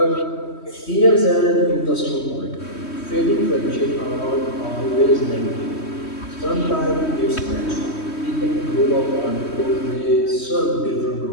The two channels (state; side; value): late; right; 3.1 ms